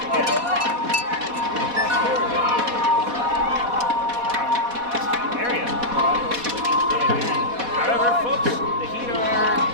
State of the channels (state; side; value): late; left; 4.1 ms